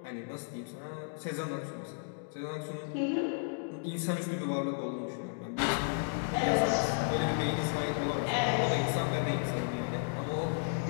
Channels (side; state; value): right; silent; digital silence